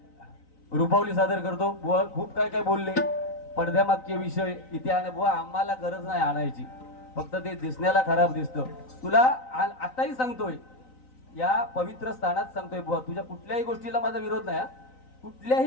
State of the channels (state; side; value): late; right; 3.9 ms